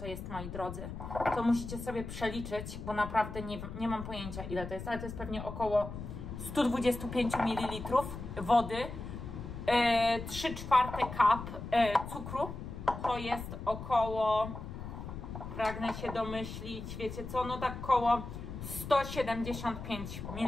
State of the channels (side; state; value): left; noise; rumble, 9 dB below the sound